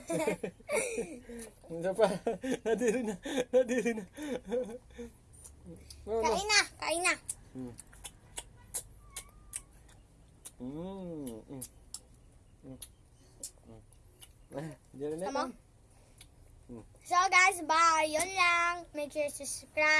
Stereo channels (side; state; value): both; identical; correlation 1.00